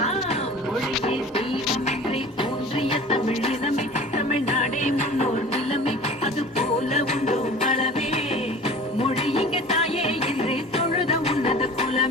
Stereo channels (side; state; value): both; normal; correlation 0.41